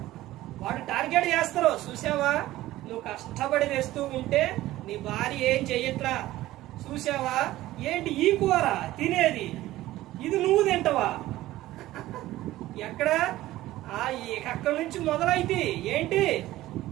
వాడు టార్గెట్ చేస్తారు. చూసావా, నువ్వు కష్టపడి తెస్తూ ఉంటే నీ భార్య ఏం చెయ్యట్లా, చూసావా, ఏంటి ఈ కూర తినేది, ఇది నువ్వు తింటావా? ఎక్కడ, అక్కడి నుంచి మొదలైతే ఏంటి,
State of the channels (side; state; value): left; quieter; 15.9 dB